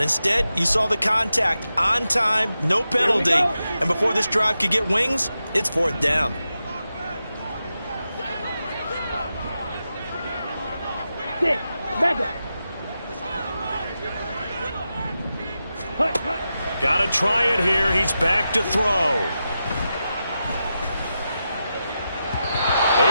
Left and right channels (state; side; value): inverted; both; correlation -0.90